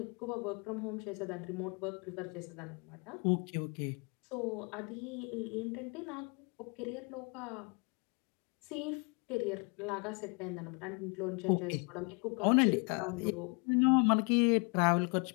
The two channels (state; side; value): quieter; right; 34.2 dB